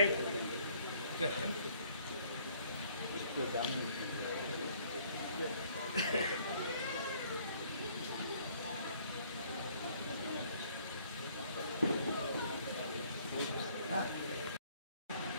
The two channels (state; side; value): inverted; both; correlation -0.61